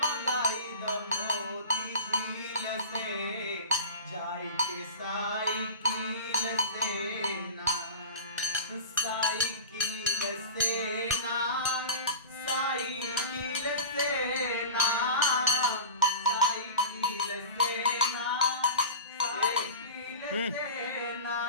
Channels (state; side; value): inverted; both; correlation -0.32